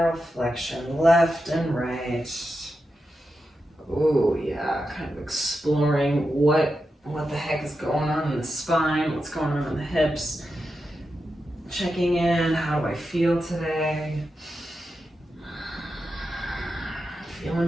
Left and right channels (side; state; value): both; normal; correlation 0.89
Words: flexion, left and right. Oh yeah, kind of exploring what the heck is going on in the spine, what's going on in the hips. Checking in, how do I feel today?